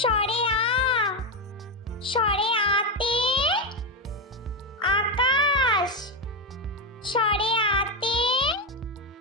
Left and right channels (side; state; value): both; normal; correlation 0.09